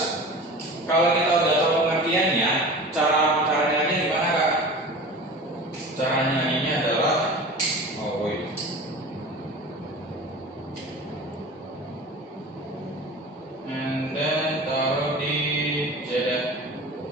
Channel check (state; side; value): normal; both; correlation 0.36